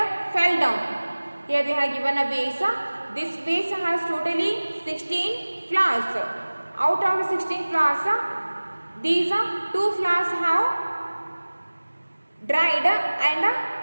fell down. Here they have given a vase. This vase has totally 16 flowers. Out of the 16 flowers, these 2 flowers have dried and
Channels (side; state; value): both; inverted; correlation -1.00